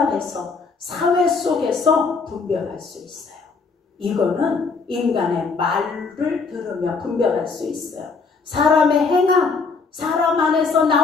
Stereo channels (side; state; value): right; quieter; 4.6 dB